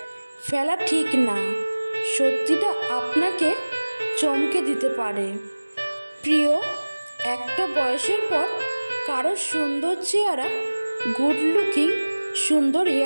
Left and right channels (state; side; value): inverted; both; correlation -1.00